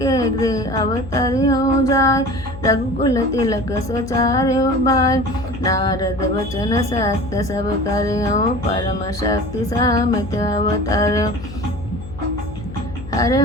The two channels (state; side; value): noise; left; hum, 13 dB below the sound